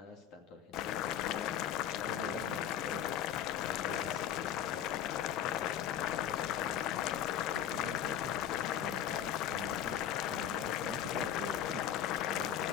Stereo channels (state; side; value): quieter; right; 10.1 dB